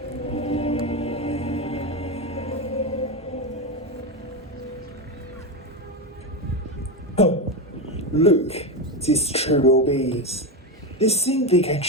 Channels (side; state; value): both; normal; correlation 0.13